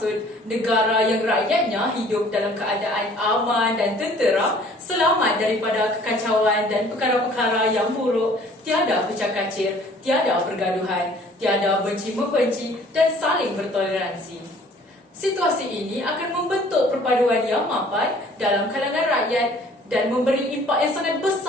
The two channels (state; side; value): normal; both; correlation 0.54